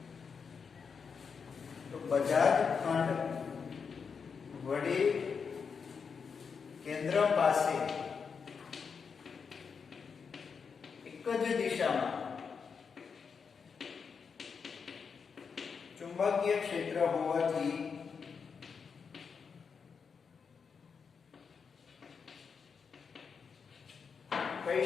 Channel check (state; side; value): quieter; right; 5.9 dB